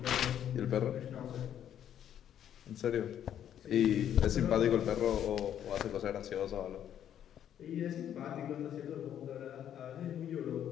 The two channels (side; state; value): right; quieter; 10.1 dB